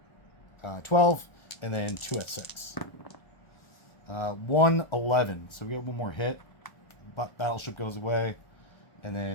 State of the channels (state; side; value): late; right; 1.4 ms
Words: 12, and then 2 at 6. 1, 11. So we get one more hit. Battleship goes away. And